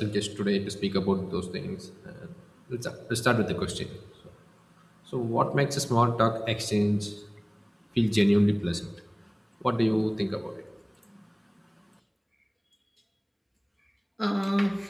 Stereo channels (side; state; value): both; identical; correlation 1.00